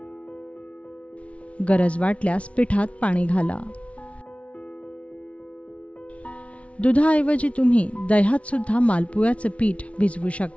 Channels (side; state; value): right; late; 0.063 ms